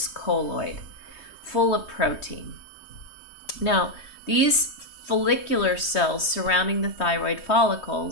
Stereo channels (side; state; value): right; late; 3.2 ms